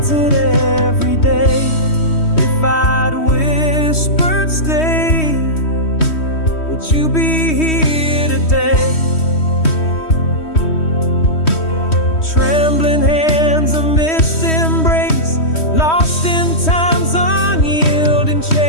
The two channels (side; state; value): right; late; 3.1 ms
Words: every day. If I'd whispered stay, would you be here today? Trembling hands, a missed embrace, lost in time's unyielding